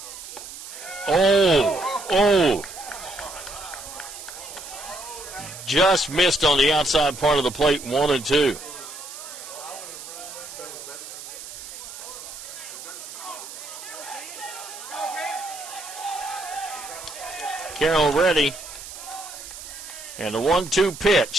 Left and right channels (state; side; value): noise; right; hiss, 12 dB below the sound